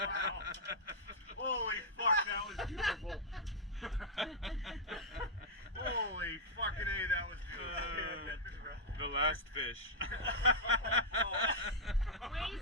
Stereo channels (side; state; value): both; normal; correlation -0.06